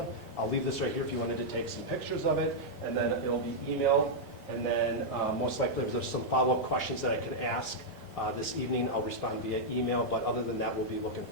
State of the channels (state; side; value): normal; both; correlation -0.05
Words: I'll leave this right here if you wanted to take some pictures of it, and then it'll be emailed. And then most likely if there's some follow-up questions that I can ask this evening, I'll respond via email. But other than that, we'll be looking